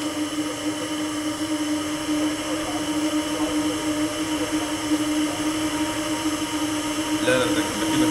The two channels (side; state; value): both; identical; correlation 1.00